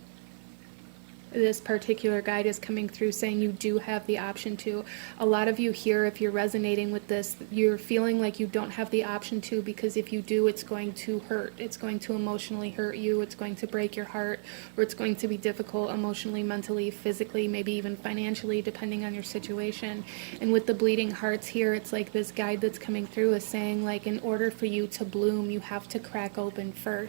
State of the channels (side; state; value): left; silent; 57 dB below the other